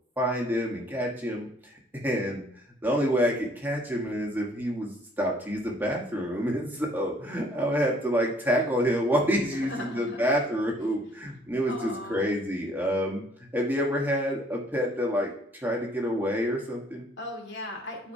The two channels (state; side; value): normal; both; correlation 0.61